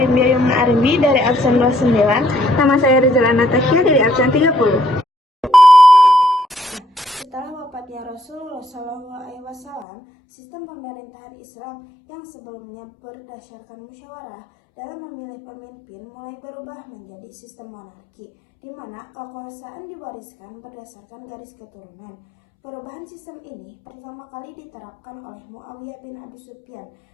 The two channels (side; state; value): right; drops out; at 9.9 s